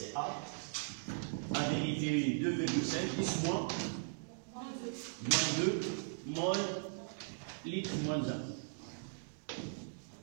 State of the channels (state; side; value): silent; left; digital silence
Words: A. En vérité, 2,5, 10 moins. Moins 2, mol, litre moins 1.